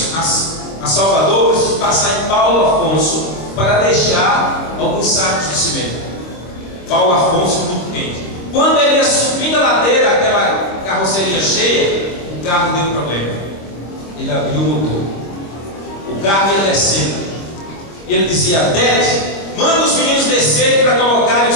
a Salvador, precisamos passar em Paulo Afonso para deixar alguns sacos de cimento. Paulo Afonso, muito quente. Quando ele ia subindo a ladeira, aquela carroceria cheia, o carro deu um problema. Ele abriu o motor, o carro ia descendo, e ele dizia: Dete, manda os meninos descerem para colocarem o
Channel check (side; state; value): right; late; 25 ms